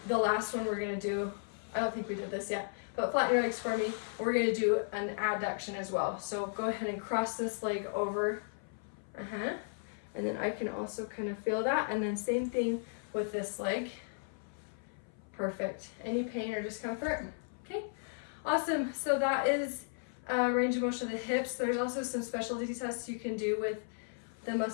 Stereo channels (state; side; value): silent; right; 54 dB below the other